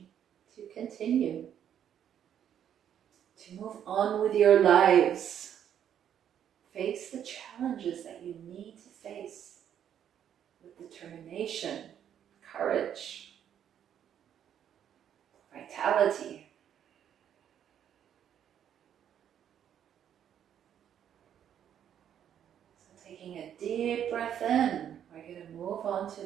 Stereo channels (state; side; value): quieter; left; 9.5 dB